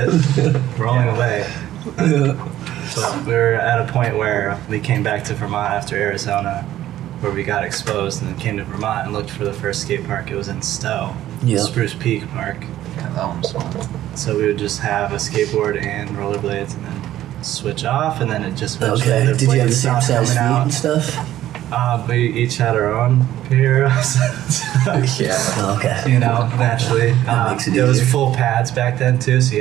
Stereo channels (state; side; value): quieter; left; 13.2 dB